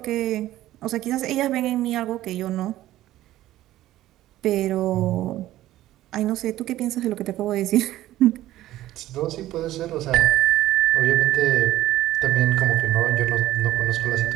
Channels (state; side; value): quieter; left; 14.7 dB